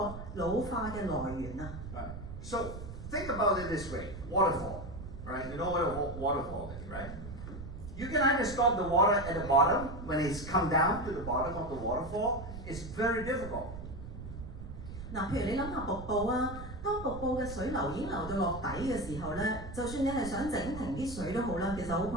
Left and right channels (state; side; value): noise; right; rumble, 10 dB below the sound